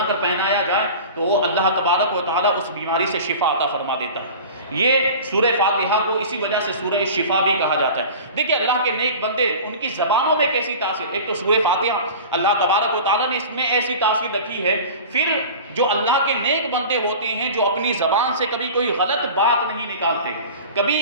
کر پہنایا جائے تو اللہ تبارک و تعالیٰ اس بیماری سے شفا عطا فرما دیتا ہے۔ یہ سورہ فاتحہ کو اسی وجہ سے سورہ شفا بھی کہا جاتا ہے۔ دیکھیں اللہ کے نیک بندے ان کی زبانوں میں کیسی تاثیر، ایک تو سورہ فاتحہ اللہ تبارک و تعالیٰ نے اس میں ایسی تاثیر رکھی ہے، پھر جو اللہ کے نیک بندے ہوتے ہیں جو اپنی زبان سے کبھی کوئی غلط بات نہیں نکالتے،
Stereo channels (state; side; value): inverted; both; correlation -0.37